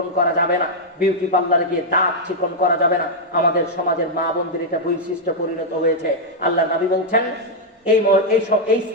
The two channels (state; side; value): normal; both; correlation -0.04